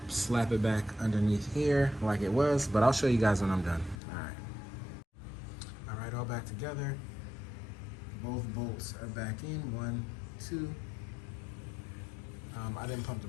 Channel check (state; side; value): drops out; right; at 4.0 s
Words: slap it back underneath here like it was, but I'll show you guys when I'm done. All right, all back together. Both bolts are back in, 1, 2. I didn't pump the